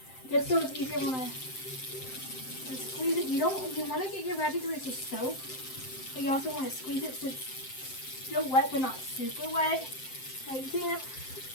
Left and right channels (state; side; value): late; right; 7.7 ms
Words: just so it's easier when I squeeze it. You want to get your magic eraser soap, but you also want to squeeze it so it's still wet but not super wet, like damp.